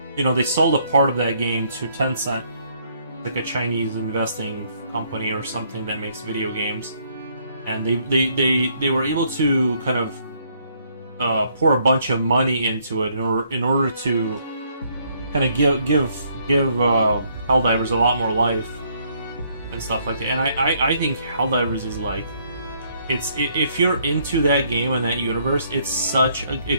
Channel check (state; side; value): inverted; both; correlation -0.68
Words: they sold a part of that game to Tencent, like a Chinese investing company or something that makes video games, and they were able to kind of pour a bunch of money into it in order to kind of give Helldivers a lot more life and stuff like that. And I think Helldivers is like, if you're into that game and that universe,